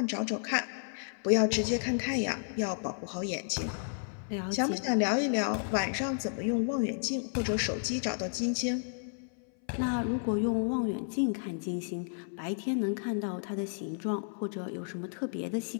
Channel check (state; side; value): silent; right; 56 dB below the other